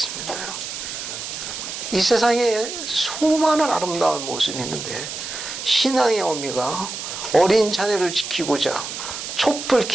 이 세상에 수많은 아름다운 모습이 있는데 신앙의 의미가 어린 자녀를 지키고자 촛불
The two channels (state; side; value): noise; right; hiss, 7 dB below the sound